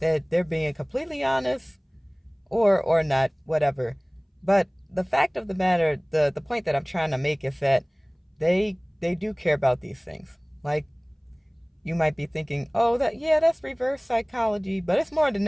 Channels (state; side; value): identical; both; correlation 1.00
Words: they're being completely honest or not, whatever. But the fact of the matter, the point that I'm trying to make is that they do care about these things. Like, you might be thinking, oh, that, yeah, that's reverse psychology, but it's more than